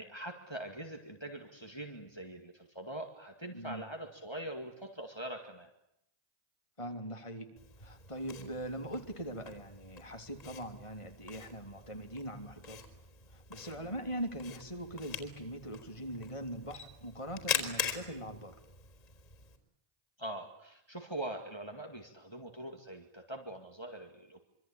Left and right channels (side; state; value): right; late; 1.8 ms